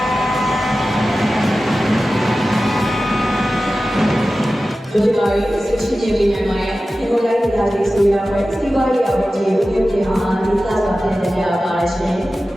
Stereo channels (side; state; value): both; normal; correlation 0.95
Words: ဒီလိုမျိုးဆက်ရှိနေပြီးနိုင်မှာဒီလိုလိုက်တာဒီဆိုရတဲ့စီးပွားရေးအဝတ်ကြီးကိုပြုပြင်အောင်ဒီစားစာပြင်နေရပါရှင်။